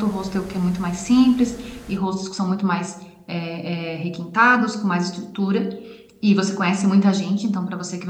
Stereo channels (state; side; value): identical; both; correlation 1.00